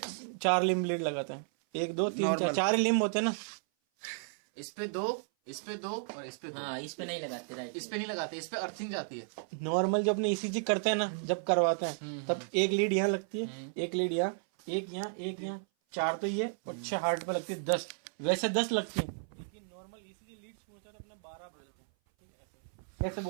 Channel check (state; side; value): silent; left; 56 dB below the other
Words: 4 लिम्ब लीड लगाते हैं। 1 2 3 4, 4 ही लिम्ब होते हैं ना। इस पे 2, इस पे 2 और इस पे 2। हाँ, इस पे नहीं लगाते, राइट। इस पे नहीं लगाते, इस पे अर्थिंग जाती है। नॉर्मल जो अपने ईसीजी करते हैं ना, जब करवाते हैं तब एक लीड यहाँ लगती है, एक लीड यहाँ, एक यहाँ, एक यहाँ, 4 तो ये और 6 हार्ट पे लगती है। 10 वैसे 10 लगती है, लेकिन नॉर्मल ईसीजी लीड्स पूछते हैं तो अपने 12 बोलते हैं, ठीक है। ऐसे